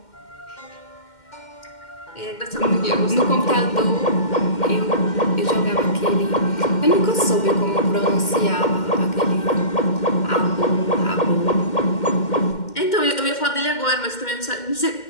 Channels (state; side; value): late; right; 2.1 ms